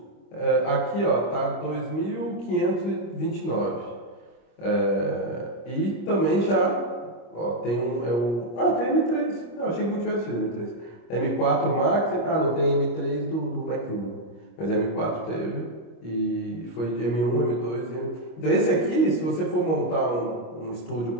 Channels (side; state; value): right; late; 25 ms